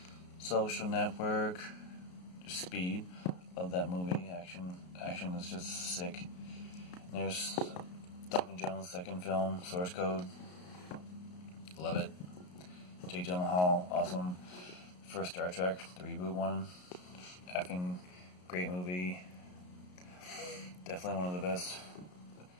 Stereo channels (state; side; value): late; right; 33 ms